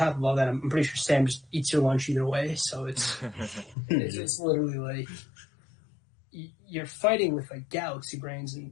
of all that, I'm pretty sure Sam just eats your lunch either way. So it's literally like you're fighting with like galaxy brains, and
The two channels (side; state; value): right; drops out; at 3.8 s